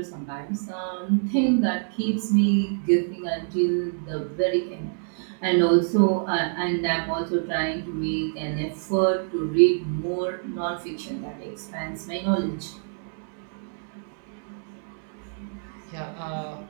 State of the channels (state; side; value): silent; left; 61 dB below the other